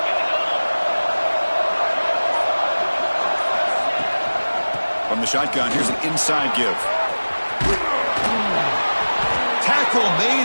From the shotgun, here's an inside give. Tackle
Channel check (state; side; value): inverted; both; correlation -1.00